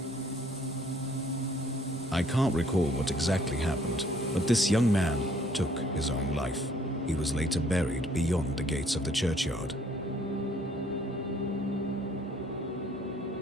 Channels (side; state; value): both; normal; correlation 0.61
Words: I can't recall what exactly happened, but this young man took his own life. He was later buried beyond the gates of the churchyard,